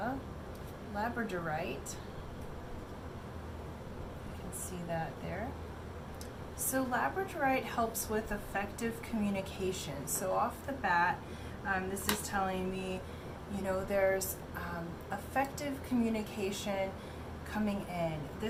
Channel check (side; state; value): both; identical; correlation 1.00